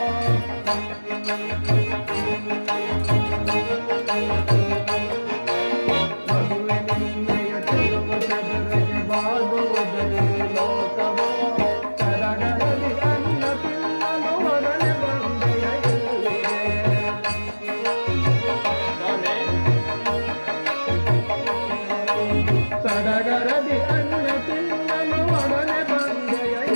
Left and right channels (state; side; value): inverted; both; correlation -1.00